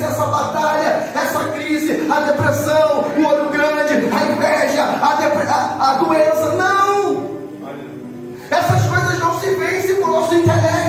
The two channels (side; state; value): both; identical; correlation 1.00